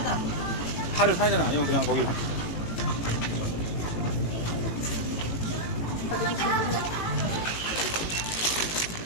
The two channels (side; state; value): right; late; 18 ms